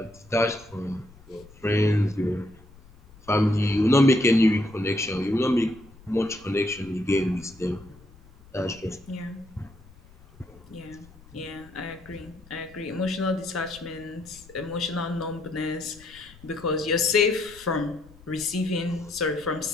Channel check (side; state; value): left; noise; rumble, 23 dB below the sound